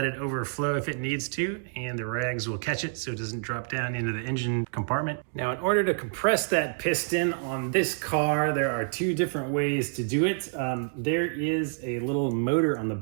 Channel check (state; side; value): silent; left; digital silence